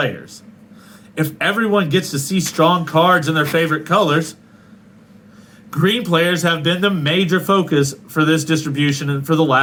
If everyone gets to see strong cards in their favorite colors, green players have been the major focus for this distribution for the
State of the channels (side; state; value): both; identical; correlation 1.00